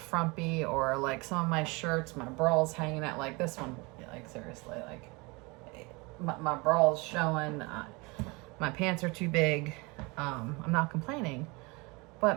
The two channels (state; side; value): quieter; left; 26.7 dB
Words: or like some of my shirts, my bral's hanging out like this one. Like seriously, like my bral's showing. My pants are too big. I'm not complaining, but